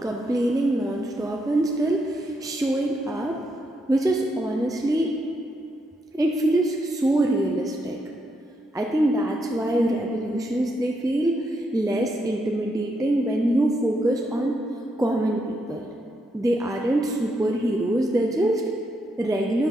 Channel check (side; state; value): both; normal; correlation 0.80